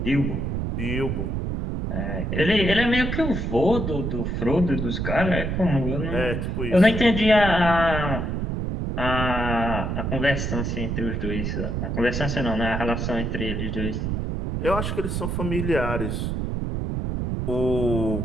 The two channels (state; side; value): noise; right; rumble, 2 dB below the sound